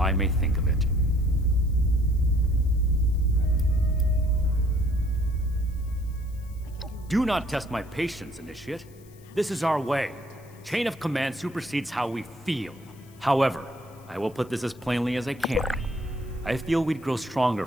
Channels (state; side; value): noise; left; hiss, 27 dB below the sound